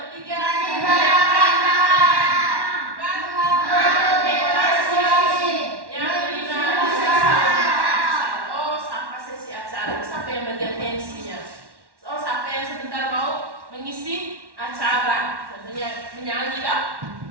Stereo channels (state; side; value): late; left; 1.1 ms